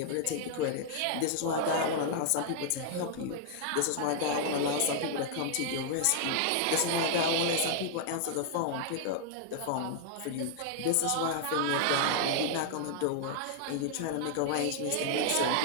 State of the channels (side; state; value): both; different; correlation -0.01